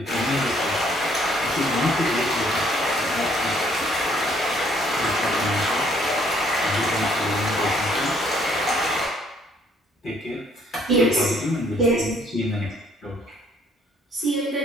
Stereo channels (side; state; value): both; normal; correlation 0.64